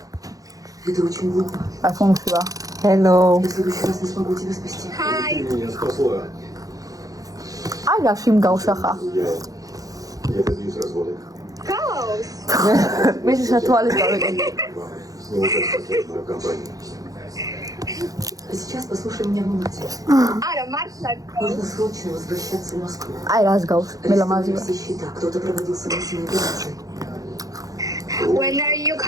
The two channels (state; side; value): late; left; 0.17 ms